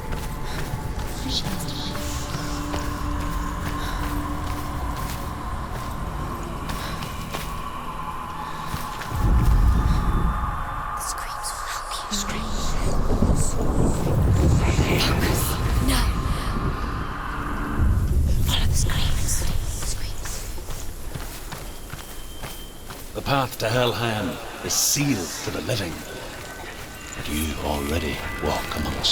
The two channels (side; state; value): both; identical; correlation 1.00